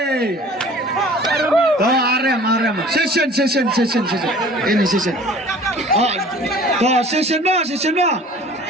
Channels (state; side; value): normal; both; correlation 0.47